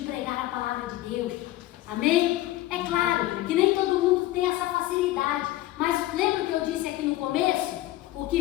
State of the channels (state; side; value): quieter; right; 16.0 dB